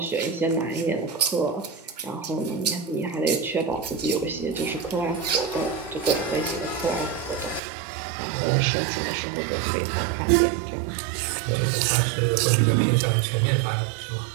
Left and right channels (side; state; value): left; drops out; at 7.6 s